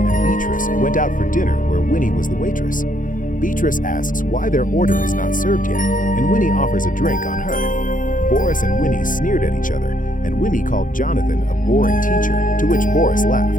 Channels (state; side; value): late; right; 0.39 ms